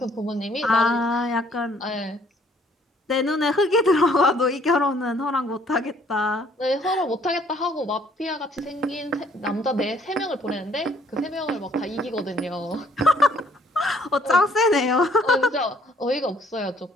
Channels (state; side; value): normal; both; correlation 0.62